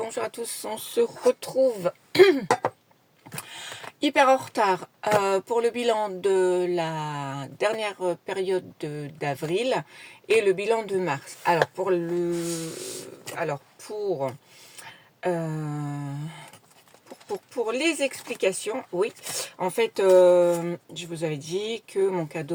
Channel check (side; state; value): both; identical; correlation 1.00